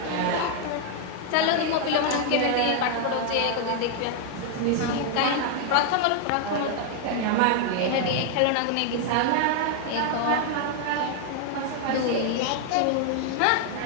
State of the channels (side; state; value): both; different; correlation 0.00